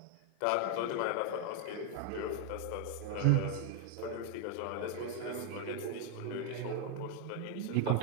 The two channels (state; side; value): different; both; correlation 0.00